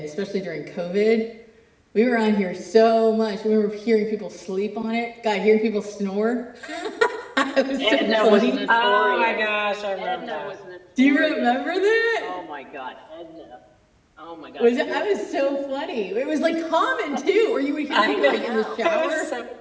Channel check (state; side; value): identical; both; correlation 1.00